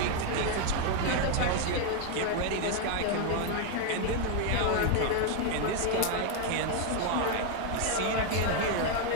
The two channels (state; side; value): different; both; correlation 0.01